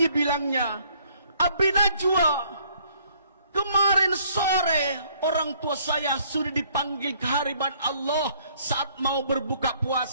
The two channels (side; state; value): both; inverted; correlation -0.63